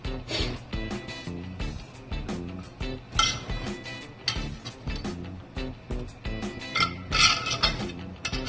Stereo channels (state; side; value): identical; both; correlation 1.00